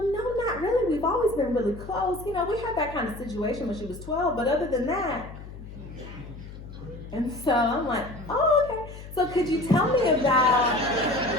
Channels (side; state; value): left; noise; hum, 14 dB below the sound